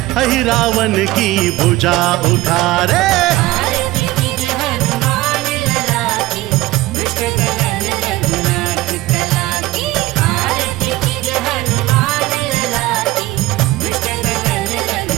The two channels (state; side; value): quieter; left; 17.8 dB